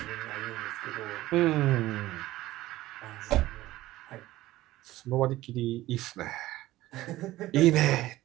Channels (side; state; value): left; quieter; 16.4 dB